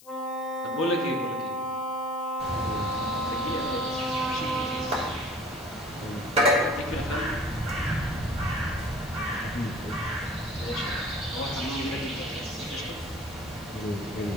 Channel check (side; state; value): left; noise; hiss, 22 dB below the sound